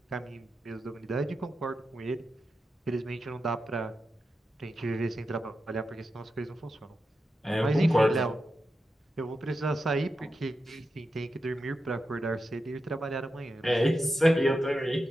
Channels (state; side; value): normal; both; correlation 0.89